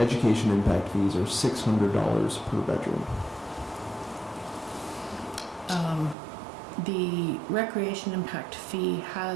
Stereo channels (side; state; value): left; drops out; at 6.2 s